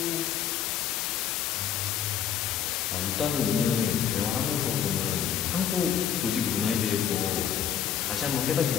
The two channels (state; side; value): quieter; right; 9.0 dB